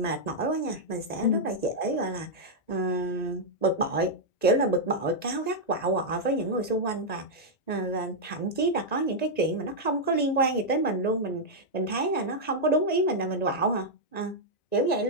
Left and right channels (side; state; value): right; late; 1.9 ms